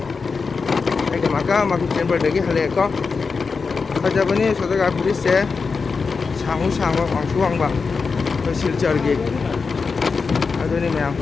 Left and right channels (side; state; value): right; quieter; 4.9 dB